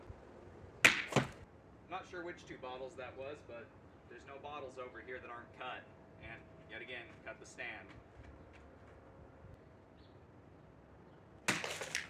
I'm not sure which 2 bottles that was, but there's no bottles over here that aren't cut. And yet again, cut the stand.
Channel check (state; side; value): identical; both; correlation 1.00